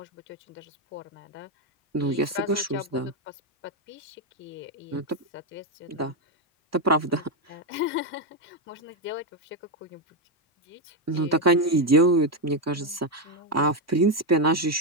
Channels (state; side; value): normal; both; correlation 0.06